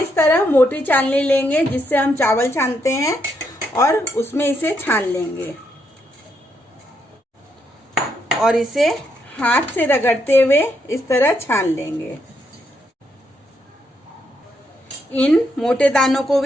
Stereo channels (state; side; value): normal; both; correlation 0.78